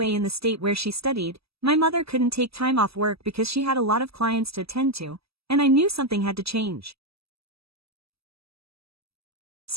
in the state where she studied, my mother couldn't take time off work because she had a lot of clients to attend to, and I knew something had to change.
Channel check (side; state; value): left; late; 0.77 ms